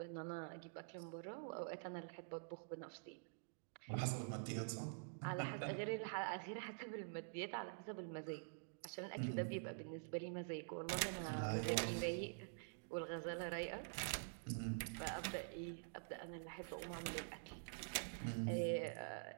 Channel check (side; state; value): left; silent; digital silence